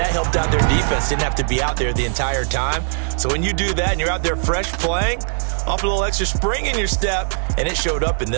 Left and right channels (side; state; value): left; silent; 66 dB below the other